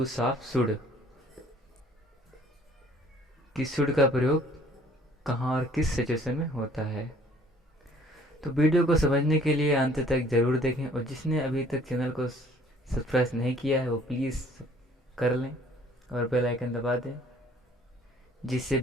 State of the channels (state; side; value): normal; both; correlation 0.57